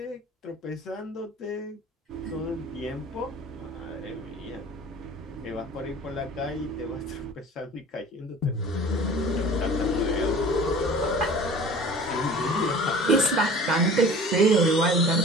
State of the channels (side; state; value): both; normal; correlation 0.43